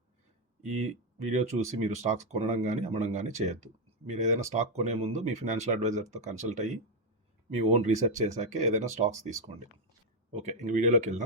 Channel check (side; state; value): both; normal; correlation 0.03